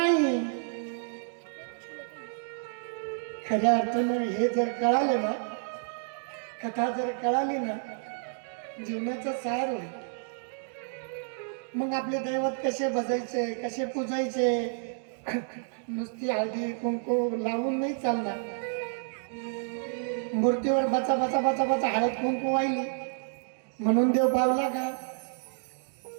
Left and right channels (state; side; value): silent; left; digital silence